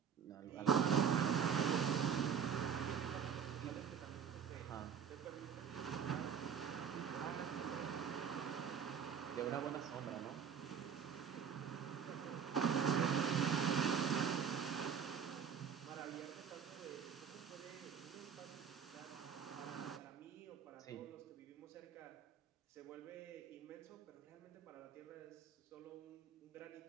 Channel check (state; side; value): quieter; left; 7.5 dB